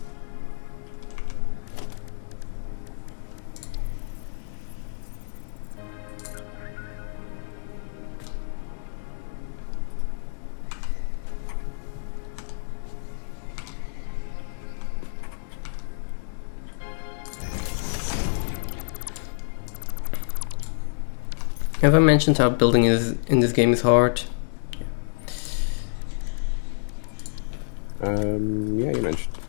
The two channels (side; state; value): right; silent; digital silence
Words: Have I mentioned how building is in this game is hard? Yeah, you mentioned.